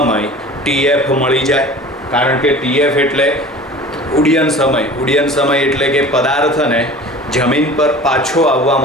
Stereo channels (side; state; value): both; normal; correlation 0.41